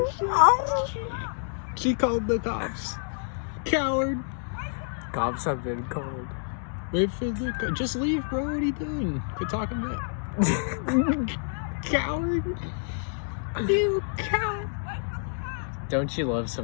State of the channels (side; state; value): right; silent; digital silence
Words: shit. She called the cops. Coward. Cops have been called. Wait for the... Just leave, bro. What are you doing? Quit talking back. Coward. You coward. Don't you love